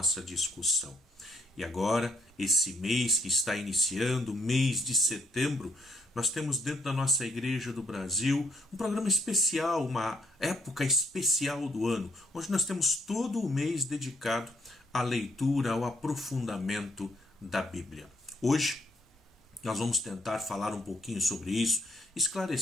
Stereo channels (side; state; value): both; normal; correlation 0.69